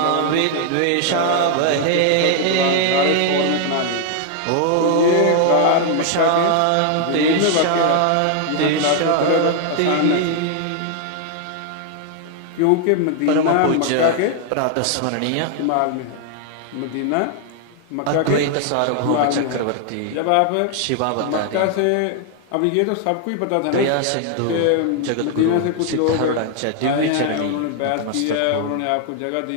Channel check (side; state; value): both; different; correlation 0.00